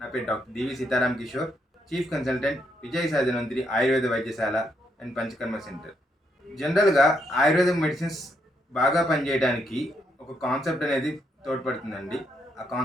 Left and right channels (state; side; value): normal; both; correlation 0.76